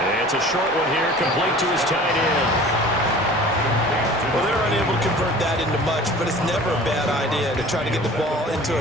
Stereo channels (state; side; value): normal; both; correlation 0.44